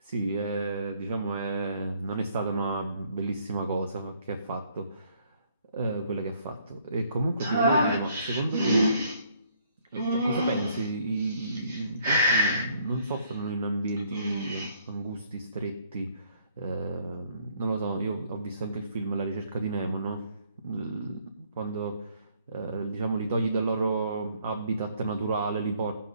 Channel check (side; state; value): both; inverted; correlation -0.65